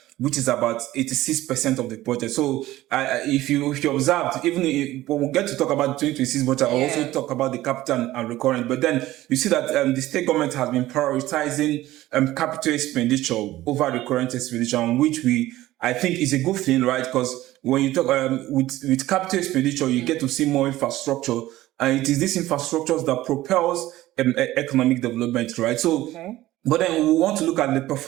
which is about 86% of the budget. So if you observed, even when we get to talk about the 2026 budget, I'll also talk about the capital and recurrent. But then you see that the state government has been prioritizing capital expenditure over recurrent expenditure, which I think is a good thing, right? Because when you talk with capital expenditure, you get to see more infrastructure, and it is this infrastructure that propels economic development, right? So, but then we want to look at the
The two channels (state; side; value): quieter; left; 16.0 dB